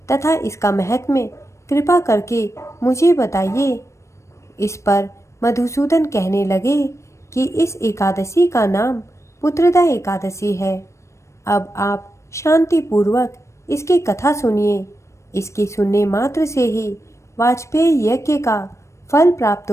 तथा इसका महत्म्य कृपा करके मुझे बताइए। इस पर मधुसूदन कहने लगे कि इस एकादशी का नाम पुत्रदा एकादशी है। अब आप शांति पूर्वक इसकी कथा सुनिए। इसके सुनने मात्र से ही वाजपेयी यज्ञ का फल प्राप्त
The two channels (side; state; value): right; late; 0.14 ms